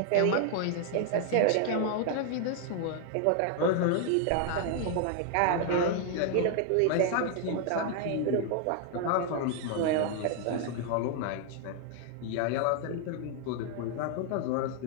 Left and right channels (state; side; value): different; both; correlation 0.00